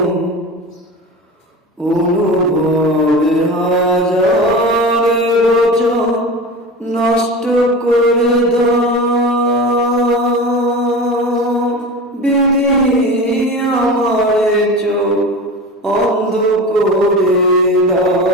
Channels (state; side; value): normal; both; correlation 0.31